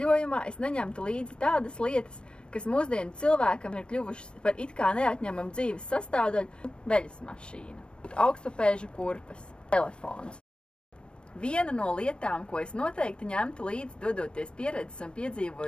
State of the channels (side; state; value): right; late; 0.052 ms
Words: es neņemtu līdzi tādas lietas, kas mūsdienu cilvēkam ir kļuvušas par it kā neatņemamu dzīves sastāvdaļu – veļas mašīna, augstupēžu kurpes, telefons. Viena no lietām, ko es noteikti ņemtu līdzi, dodoties pieredzes un